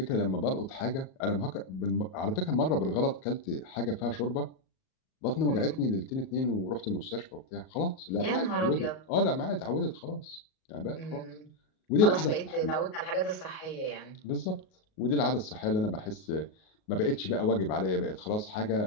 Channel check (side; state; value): right; late; 38 ms